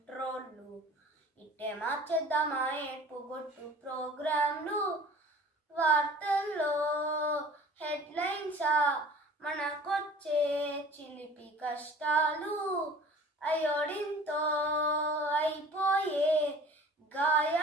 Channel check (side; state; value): both; normal; correlation 0.46